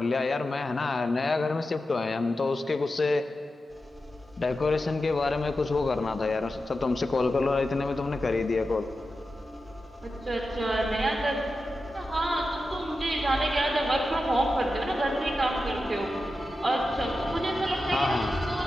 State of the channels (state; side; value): normal; both; correlation 0.91